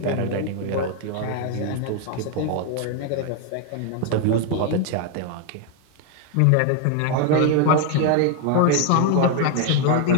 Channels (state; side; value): different; both; correlation 0.01